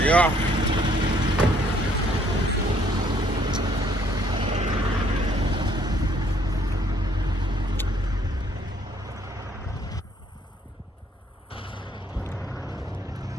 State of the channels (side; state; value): both; normal; correlation 0.64